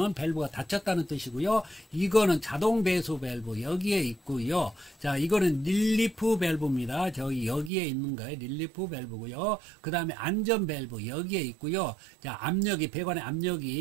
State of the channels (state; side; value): drops out; left; at 7.7 s